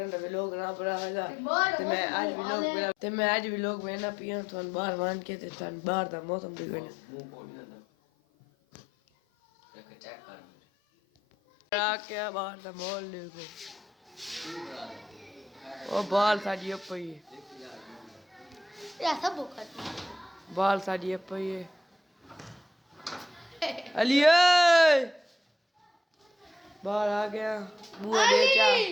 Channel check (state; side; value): normal; both; correlation 0.79